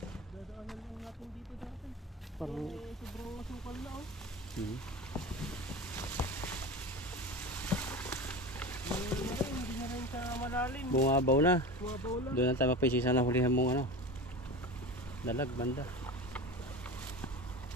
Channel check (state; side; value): normal; both; correlation 0.29